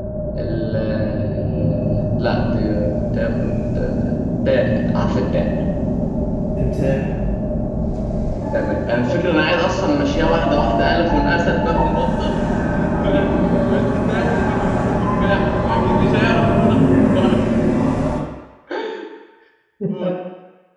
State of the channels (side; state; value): both; identical; correlation 1.00